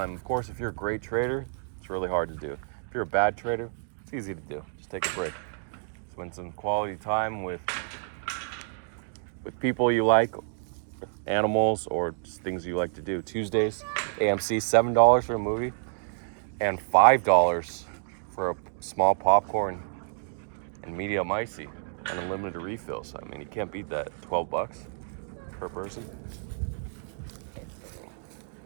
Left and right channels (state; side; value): silent; left; digital silence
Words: Of course, if you're a great trader, it's really hard to do. If you're a bad trader, it's easy to do. Just take a break. Spend some quality time with people you like, with animals, or just things you like to do. Tuesdays, AMC, $7 for a movie, and $5 for a small popcorn and medium icy, and unlimited refills. I mean, you can't beat that. $12 per person.